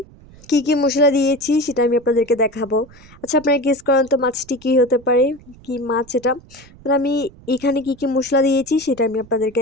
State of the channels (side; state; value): right; noise; rumble, 23 dB below the sound